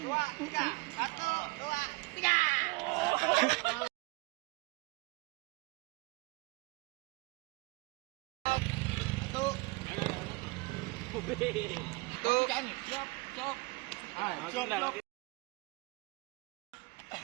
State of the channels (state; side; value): quieter; left; 24.5 dB